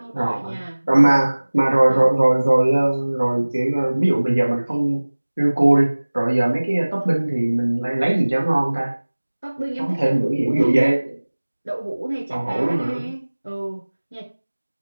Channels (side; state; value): both; inverted; correlation -1.00